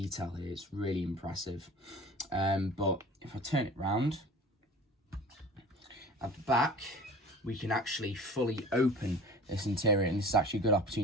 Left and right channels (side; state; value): both; normal; correlation 0.41